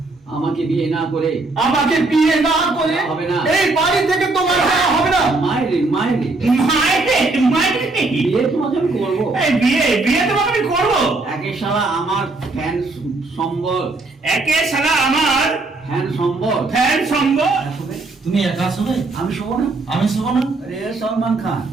বিয়ে না করে আমাকে বিয়ে না করে হবে না। এই বাড়ি থেকে তোমার যাওয়া হবে না। মায়েরে মায়েরে মাইরে বিয়ে তোমাকে আমি করবো। বিয়ে তোমাকে আমি করবো। একে শালা আমার ফ্যান সম্বল, একে শালা আমার ফ্যান সম্বল। ফ্যান সঙ্গ। তুমি একা শোবে, আমি শোবো না। আমি শোবো না। अरे सलमान खान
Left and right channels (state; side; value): quieter; left; 3.3 dB